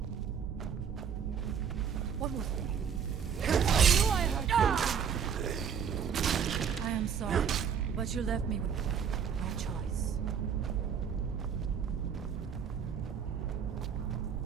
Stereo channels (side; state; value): left; quieter; 7.4 dB